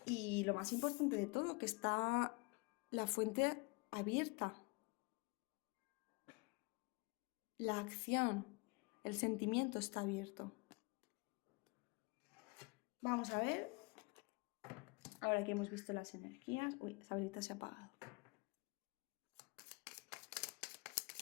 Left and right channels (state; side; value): quieter; right; 28.8 dB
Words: Y lo más importante de todo, que está la fuente abierta. La acción, el sentimiento está abierto. Vamos a ver, ahora que hemos visto las energías. Uy, esa velita se ha apagado.